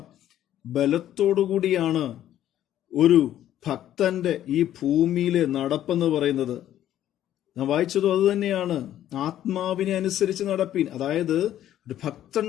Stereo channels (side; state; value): right; quieter; 11.9 dB